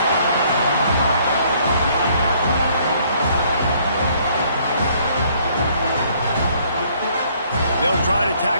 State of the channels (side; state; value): both; inverted; correlation -0.63